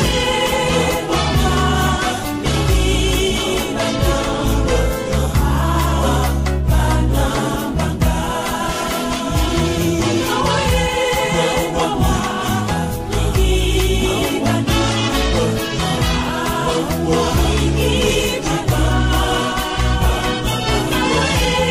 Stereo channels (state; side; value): identical; both; correlation 1.00